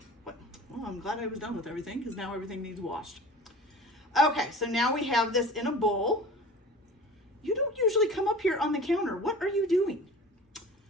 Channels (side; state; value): both; normal; correlation 0.40